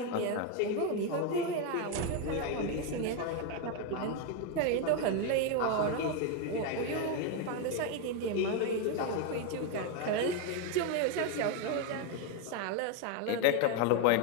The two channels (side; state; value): both; different; correlation 0.02